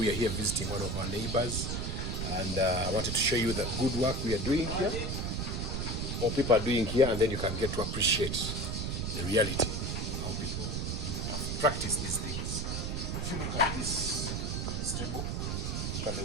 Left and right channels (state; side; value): noise; right; rumble, 2 dB below the sound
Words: are here visiting one of our neighbors, and I wanted to show you the good work we are doing here, or people are doing here, and then you can get to appreciate the reality of how people have practiced these things. If you look at this stable, look at the